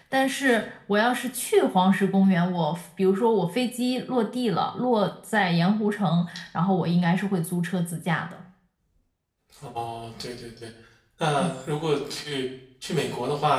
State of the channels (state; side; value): identical; both; correlation 1.00